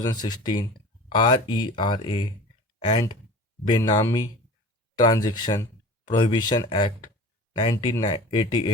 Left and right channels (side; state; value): both; normal; correlation 0.39